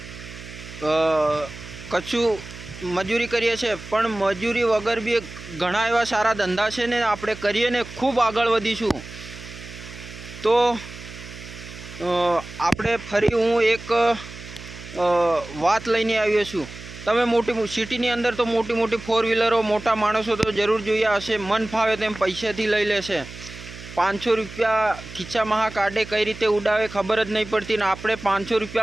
कछु मजूरी करीए छे, पण मजूरी वगर बी घणा एवा सारा धंधा छे ने आपणे करीए ने खूब आगळ वधीशुं। तो आपणे फरी हूँ एक वात लईने आव्यो छुं। तमे मोटी सिटीनी अंदर तो मोटी मोटी 4 व्हीलरो मोटा माणसो तो जरूर जोया हशे। मन फावे तेम पैसाथी लई लेशे। 500 रुपया खीचामां काढे कई रीते उडावे खबर ज नहीं पड़ती ने आपणे 500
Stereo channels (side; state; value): right; noise; hum, 14 dB below the sound